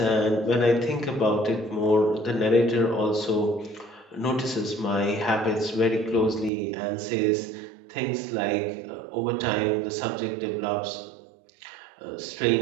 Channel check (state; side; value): drops out; left; at 6.5 s